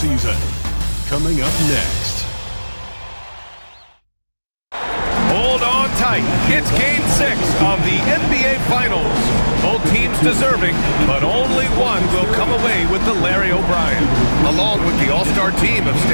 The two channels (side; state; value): both; inverted; correlation -1.00